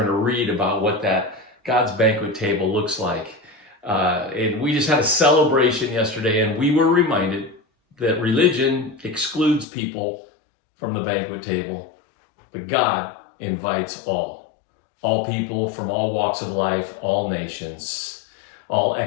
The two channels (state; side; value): drops out; right; at 9.7 s